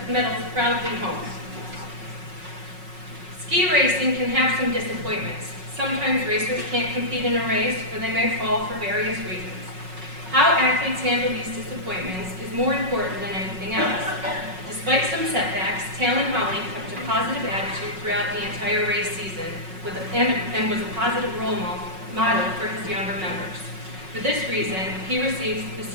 proudly home. Ski racing can have some disappointments. Sometimes racers can't compete in a race or they may fall for various reasons. How athletes handle these disappointments is more important than anything else. Despite some setbacks, Talon Holly kept a positive attitude throughout the entire race season and was a positive role model for his younger members. For this reason, he receives the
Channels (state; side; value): late; left; 5.4 ms